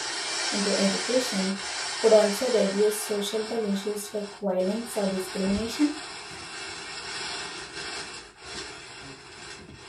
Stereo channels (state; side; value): identical; both; correlation 1.00